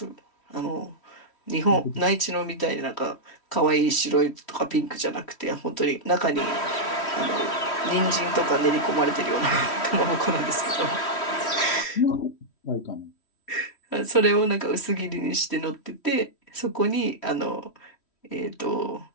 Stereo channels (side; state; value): right; late; 3.1 ms